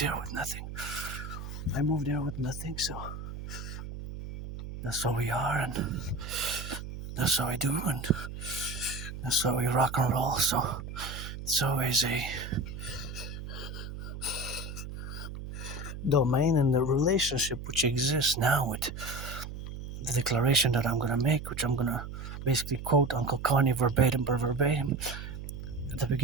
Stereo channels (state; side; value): noise; right; hum, 9 dB below the sound